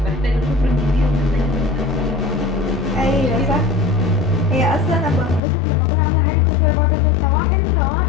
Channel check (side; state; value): right; drops out; at 5.4 s